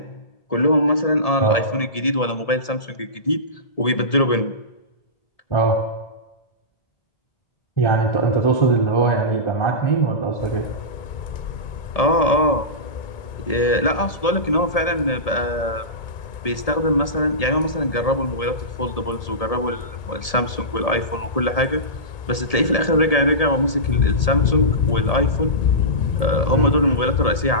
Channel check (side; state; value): right; late; 1.8 ms